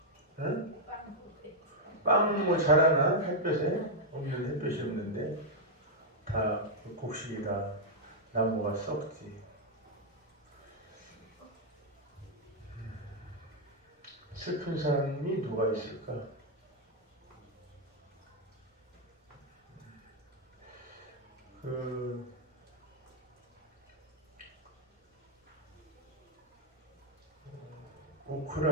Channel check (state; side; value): normal; both; correlation -0.03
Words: 응? 빵 뭐 잘하나? 햇볕에? 없는 햇볕이 없는데 다 곡식이라 나무가 썩지. 슬픈 사람이 누가 있을까? 그